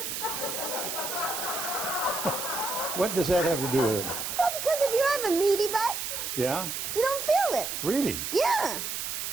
What does that have to do with it? Well, because if you have a meaty butt, Yeah? you don't feel it. Really? Yeah.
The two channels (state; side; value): noise; right; hiss, 4 dB below the sound